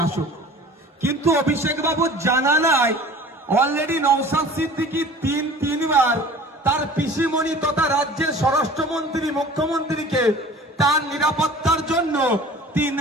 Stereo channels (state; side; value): normal; both; correlation 0.44